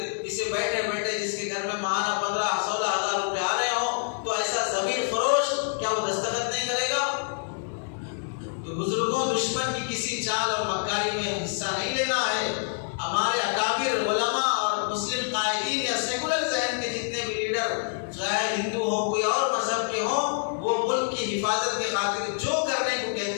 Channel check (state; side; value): silent; right; digital silence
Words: اسے بیٹھے بیٹھے جس کے گھر میں ماہانہ 15-16 ہزار روپے آ رہے ہوں تو ایسا ضمیر فروش کیا وہ دستخط نہیں کرے گا؟ تو بزرگوں دشمن کی کسی چال اور مکاری میں حصہ نہیں لینا ہے. ہمارے اکابر علماء اور مسلم قائدین یا سیکولر ذہن کے جتنے بھی لیڈر چاہے ہندو ہوں کوئی اور مذہب کے ہوں وہ ملک کی حفاظت کے خاطر جو کرنے کو